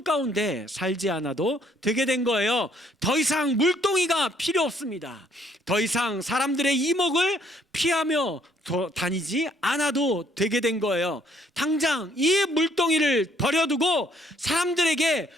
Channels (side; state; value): both; normal; correlation 0.65